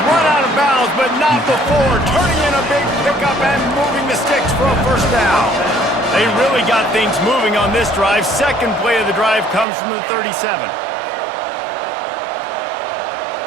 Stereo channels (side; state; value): left; drops out; at 9.7 s